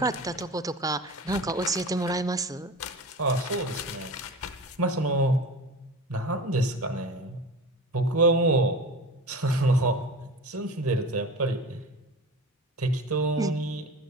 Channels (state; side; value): normal; both; correlation 0.33